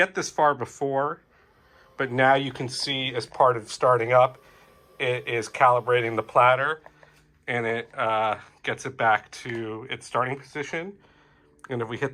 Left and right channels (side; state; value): both; identical; correlation 1.00